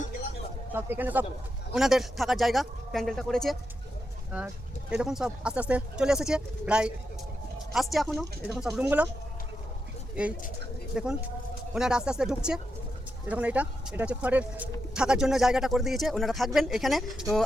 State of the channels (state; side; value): normal; both; correlation 0.86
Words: সব এখানে সব ওনাদের থাকার জায়গা প্যান্ডেলটা করেছে। আর এই দেখুন, সব আস্তে আস্তে চলে এসেছে, প্রায় আসছে এখনও। এই দেখুন সব রুমগুলো, এই দেখুন ওনারা আস্তে আস্তে ঢুকছে। এই দেখুন, এটা হচ্ছে খড়ের থাকার জন্য জায়গাটা করে দিয়েছে, ওনারা থাকবেন এখানে। তো